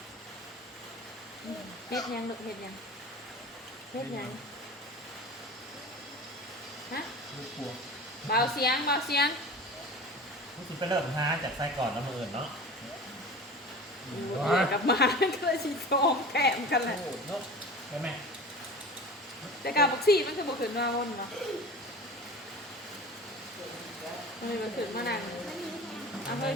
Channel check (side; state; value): both; normal; correlation 0.36